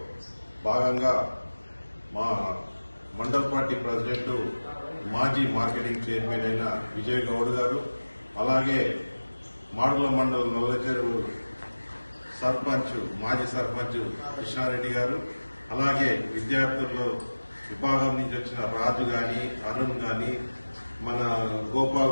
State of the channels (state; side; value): inverted; both; correlation -1.00